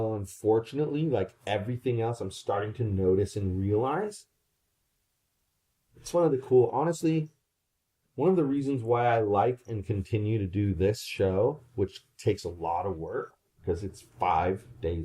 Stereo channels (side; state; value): both; identical; correlation 1.00